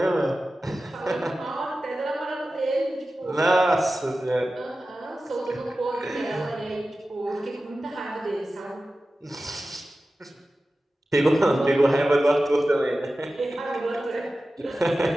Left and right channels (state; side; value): normal; both; correlation 0.94